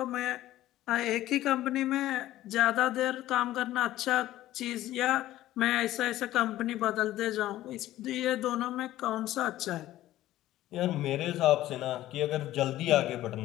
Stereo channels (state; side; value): quieter; right; 14.6 dB